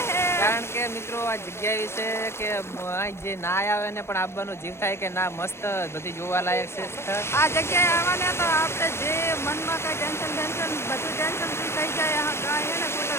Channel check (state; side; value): late; right; 0.12 ms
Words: હે. કારણ કે મિત્રો આ જગ્યા વિશે કે જે ના આવે ને પણ આવવાનો જીવ થાય કે ના, મસ્ત બધી જોવા લાયક છે સ્થળ. આ જગ્યાએ આવવાને તો આપણે જે મનમાં કઈ ટેન્શન બધું ટેન્શન ફ્રી થઈ જાય. કાંઈ એને